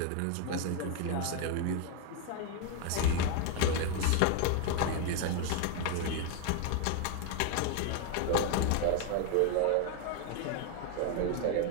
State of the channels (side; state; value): both; different; correlation 0.01